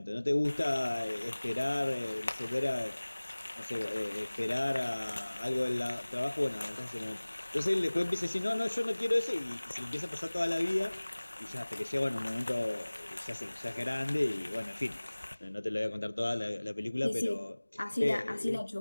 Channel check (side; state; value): both; inverted; correlation -1.00